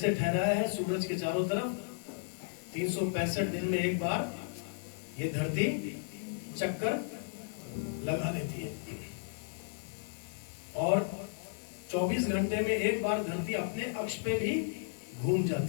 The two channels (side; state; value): right; silent; 55 dB below the other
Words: ठहराया है सूरज के चारों तरफ 365 दिन में एक बार ये धरती चक्कर लगा लेती है और 24 घंटे में एक बार धरती अपने अक्ष पे भी घूम